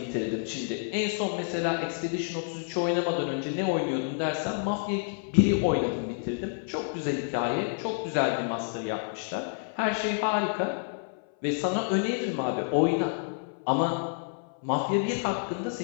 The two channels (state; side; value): silent; right; 58 dB below the other